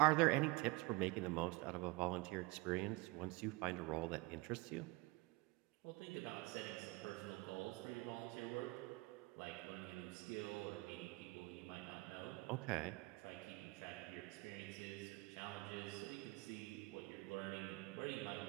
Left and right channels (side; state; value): left; quieter; 23.6 dB